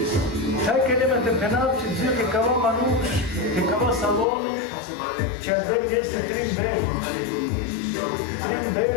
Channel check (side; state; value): right; drops out; at 4.2 s